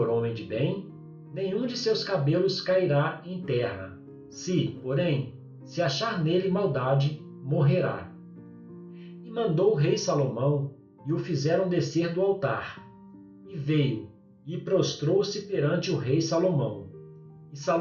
homem de bem, nenhum de seus cabelos cairá em terra. Se, porém, se achar nele maldade, morrerá. E mandou o rei Salomão, e o fizeram descer do altar. E veio, e prostrou-se perante o rei Salomão. E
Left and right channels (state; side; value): identical; both; correlation 1.00